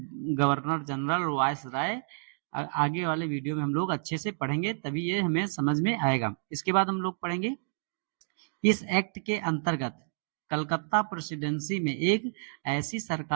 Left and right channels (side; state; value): left; silent; digital silence